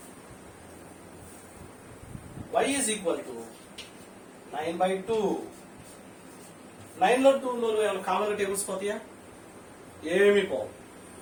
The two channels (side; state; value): both; identical; correlation 1.00